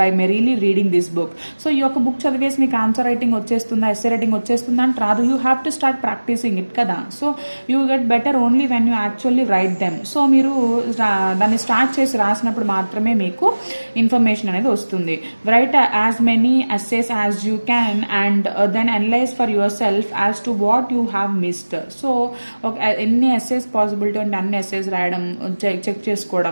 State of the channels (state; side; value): inverted; both; correlation -1.00